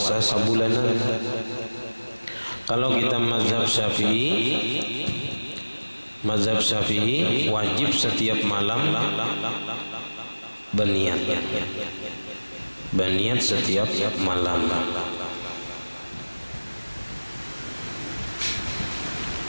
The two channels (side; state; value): both; inverted; correlation -1.00